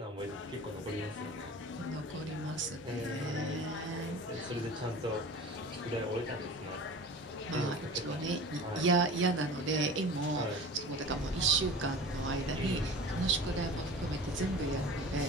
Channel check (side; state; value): both; normal; correlation 0.38